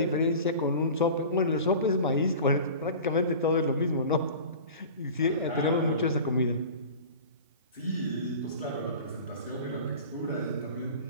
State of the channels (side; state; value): both; inverted; correlation -0.38